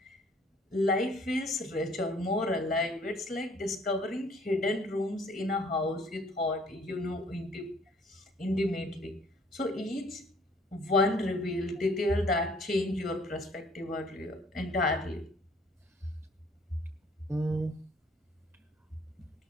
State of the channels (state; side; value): normal; both; correlation 0.58